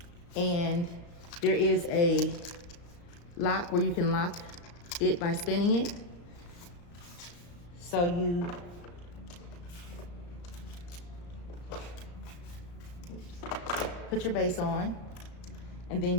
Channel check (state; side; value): late; right; 35 ms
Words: and there is a lock where you can lock it by spinning it. So you put your base on, and